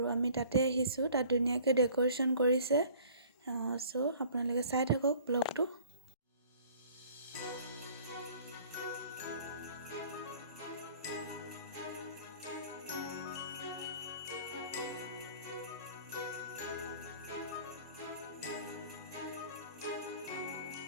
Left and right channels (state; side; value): inverted; both; correlation -0.51